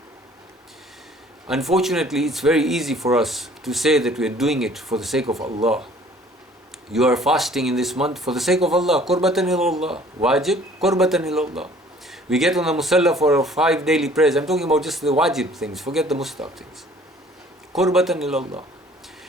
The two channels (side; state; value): both; normal; correlation 0.54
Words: Unfortunately, it's very easy for us to say that we are doing it for the sake of Allah. You are fasting in this month for the sake of Allah. Qurbatan ilallah. Wajib, qurbatan ilallah. We get on the musalla for our 5 daily prayers. I'm talking about just the wajib things. Forget the mustahab things. Qurbatan ilallah.